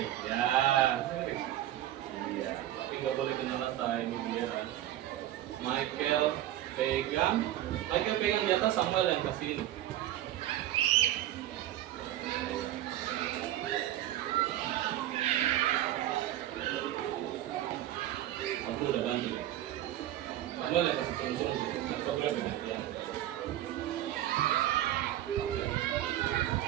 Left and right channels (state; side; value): quieter; left; 13.3 dB